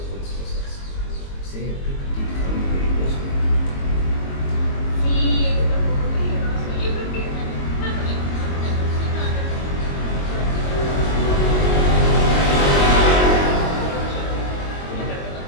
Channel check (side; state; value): right; late; 22 ms